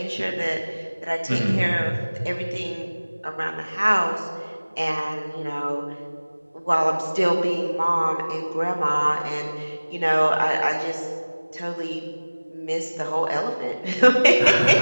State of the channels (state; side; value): inverted; both; correlation -1.00